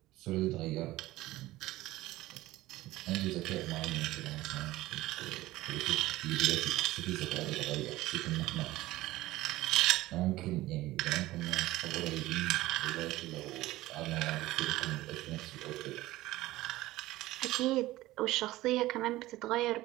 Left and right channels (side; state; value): left; quieter; 17.3 dB